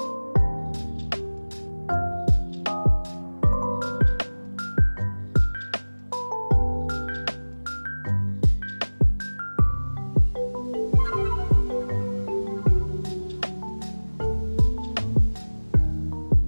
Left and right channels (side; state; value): both; inverted; correlation -1.00